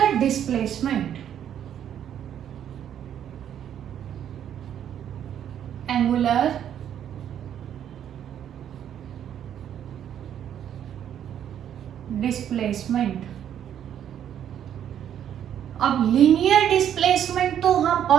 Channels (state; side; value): quieter; left; 9.8 dB